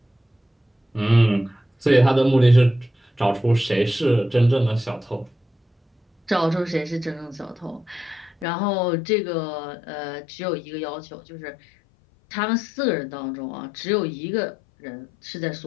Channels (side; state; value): right; drops out; at 8.5 s